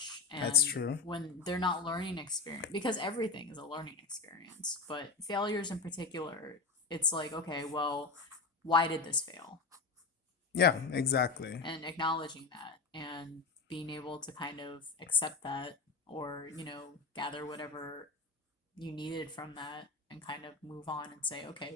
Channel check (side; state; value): right; quieter; 4.1 dB